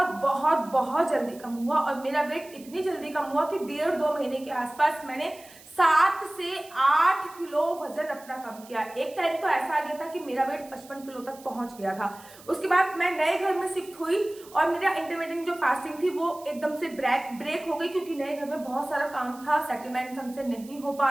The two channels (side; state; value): right; noise; hiss, 22 dB below the sound